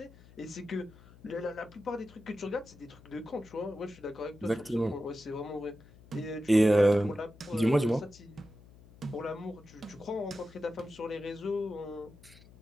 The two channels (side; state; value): left; noise; hum, 22 dB below the sound